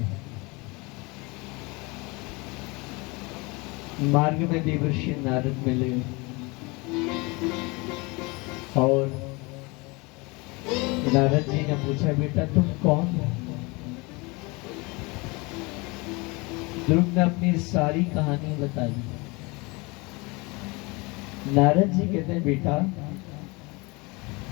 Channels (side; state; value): right; quieter; 26.4 dB